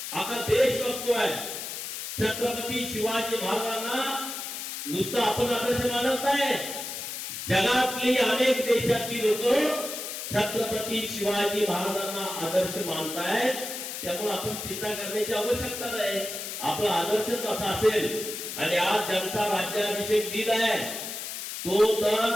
आता देश बघतोय. छत्रपती शिवाजी महाराजांना नुसतं आपण आदर्श मानत नाही, जगातली अनेक देशातली लोक छत्रपती शिवाजी महाराजांना आदर्श मानतायत. त्यामुळे आपण चिंता करण्याची आवश्यकता नाही. आपला आदर्शच असा असेल. आणि आज ज्यांचा राज्याभिषेक दिन आहे तो तर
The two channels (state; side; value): noise; left; hiss, 7 dB below the sound